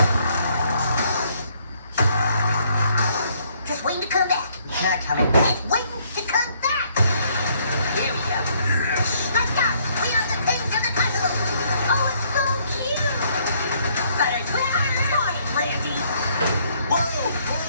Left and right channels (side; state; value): both; inverted; correlation -0.67